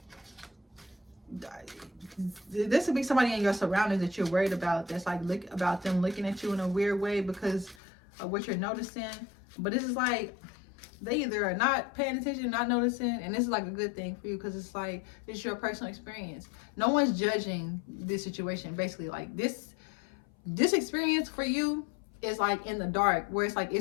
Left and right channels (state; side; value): drops out; right; at 7.8 s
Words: this would be somebody in your surroundings that you're worried about, that's like about them looking at you in a weird way because of what you're noticing. But this is like, they either are not paying attention, not noticing, and this is like a good thing for you, because it's like, this is your personal experience. No one's judging this situation. Basically, like this experience for you is like in the dark, where it's like,